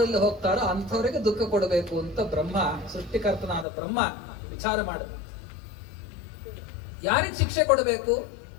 ಹೋಗ್ತಾರೋ ಅಂಥವರಿಗೆ ದುಃಖ ಕೊಡಬೇಕು ಅಂತ ಬ್ರಹ್ಮ, ಸೃಷ್ಟಿಕರ್ತನಾದ ಬ್ರಹ್ಮ ವಿಚಾರ ಮಾಡಿದ. ಯಾರಿಗೆ ಶಿಕ್ಷೆ ಕೊಡಬೇಕು?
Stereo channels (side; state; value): right; drops out; at 3.7 s